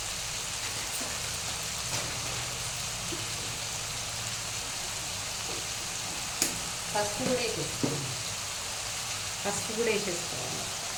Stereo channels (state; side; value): identical; both; correlation 1.00